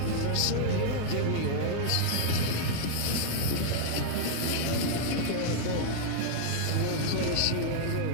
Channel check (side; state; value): both; different; correlation -0.01